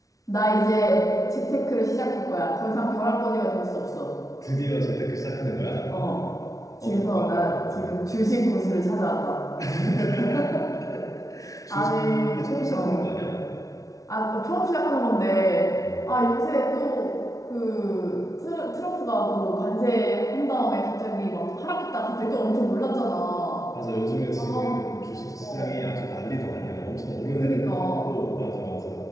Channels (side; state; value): right; late; 0.17 ms